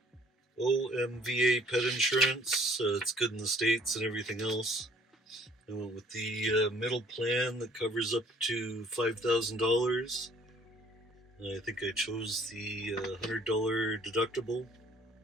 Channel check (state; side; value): normal; both; correlation 0.58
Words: OMVA pet insurance. It's good in the States and everything else. I went with the middle plan that covers up to $5,000. I think I chose the $100 deductible,